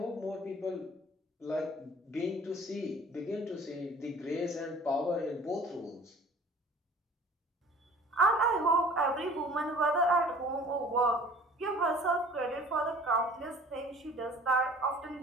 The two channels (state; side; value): normal; both; correlation 0.49